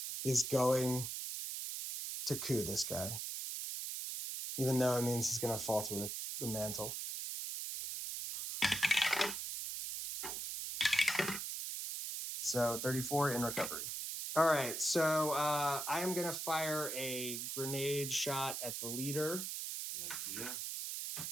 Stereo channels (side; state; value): right; noise; hiss, 4 dB below the sound